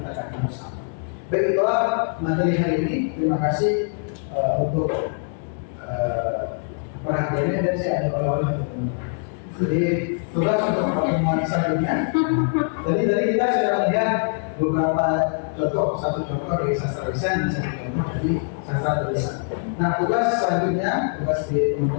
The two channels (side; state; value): right; silent; 63 dB below the other